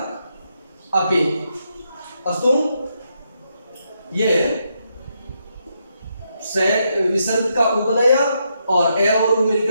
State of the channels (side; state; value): both; inverted; correlation -0.80